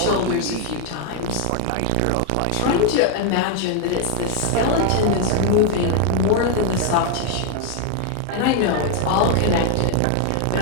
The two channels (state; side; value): different; both; correlation 0.00